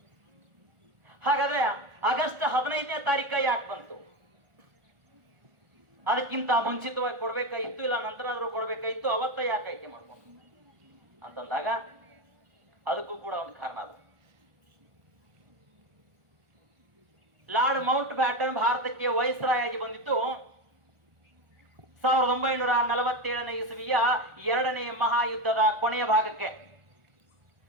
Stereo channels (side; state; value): left; late; 1.4 ms